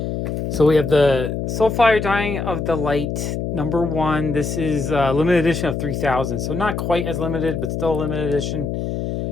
So we have the Soulfire Dying of the Light, number 1. This is a limited edition of 3,000. So not quite as limited, but still a limited edition.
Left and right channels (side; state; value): left; noise; hum, 3 dB below the sound